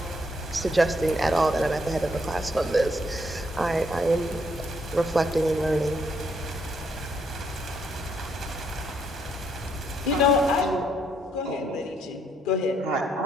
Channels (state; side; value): normal; both; correlation 0.72